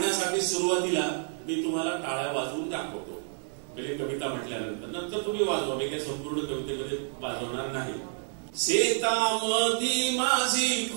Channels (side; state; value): left; silent; 58 dB below the other